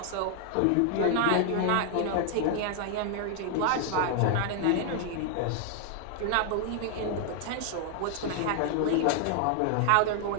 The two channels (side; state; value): both; different; correlation 0.00